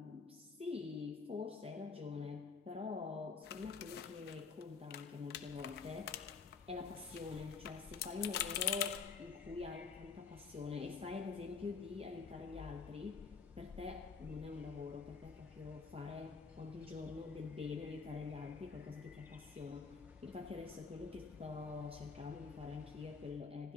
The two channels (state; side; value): quieter; right; 5.4 dB